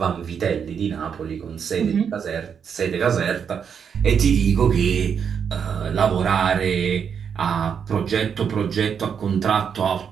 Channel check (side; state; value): left; quieter; 7.2 dB